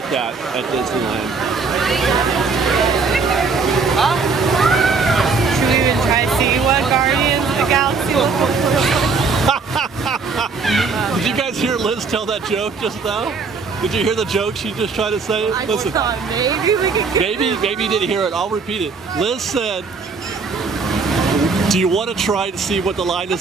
that at Disneyland? Should we even try to see what Guardians of the Galaxy looks like? Did you guys hear Liz tell that joke just now? Did you hear the joke she just tried to say? I Listen, thought maybe we could get maybe you didn't hear it. I'll repeat it. Liz said, do you want to try to see what the line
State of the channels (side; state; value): left; quieter; 4.6 dB